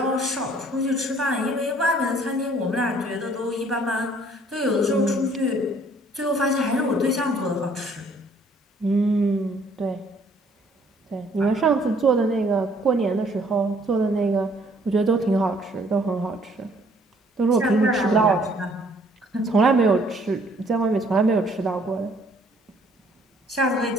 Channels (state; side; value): normal; both; correlation 0.61